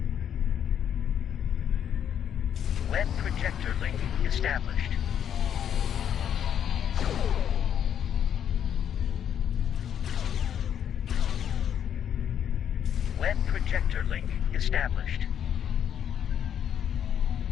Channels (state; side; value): quieter; right; 9.1 dB